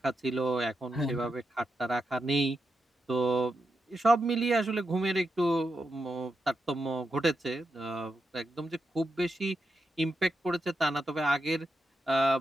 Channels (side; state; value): both; normal; correlation 0.86